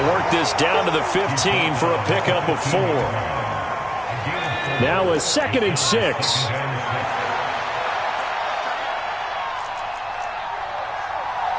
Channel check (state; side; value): identical; both; correlation 1.00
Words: work this down to the 15 for a pickup of 4. Now a 2nd and 6.